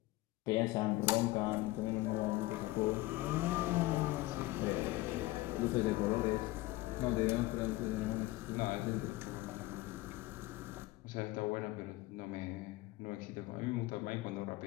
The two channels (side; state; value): right; quieter; 18.7 dB